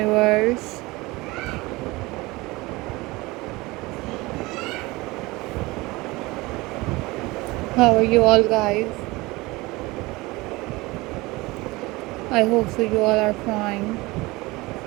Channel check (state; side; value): quieter; left; 21.8 dB